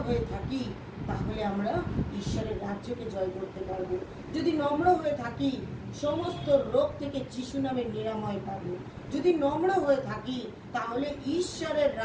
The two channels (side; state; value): both; identical; correlation 1.00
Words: হয়ে থাকি, তাহলে আমরা ঈশ্বরের রাজ্যকে জয় করতে পারবো। যদি নম্র হয়ে থাকি, সমস্ত রোগ থেকে যিশু নামে নিরাময় পাবো। যদি নম্র হয়ে থাকি, তাহলে ঈশ্বরের